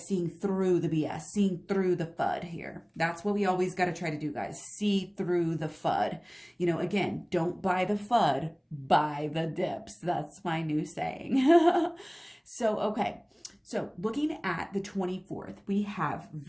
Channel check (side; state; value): both; identical; correlation 1.00